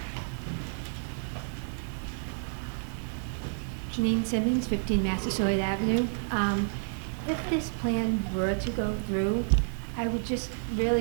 Janine Simmons, 15 Massasoit Avenue. If this plan were to go through, I would just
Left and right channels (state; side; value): silent; left; digital silence